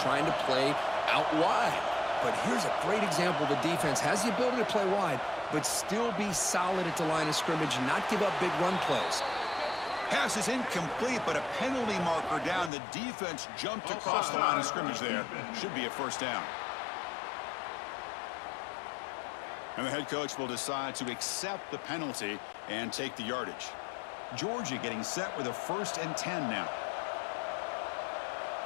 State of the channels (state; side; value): drops out; right; at 12.7 s